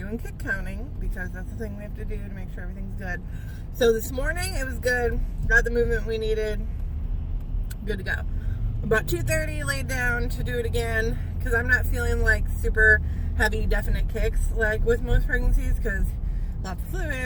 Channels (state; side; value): identical; both; correlation 1.00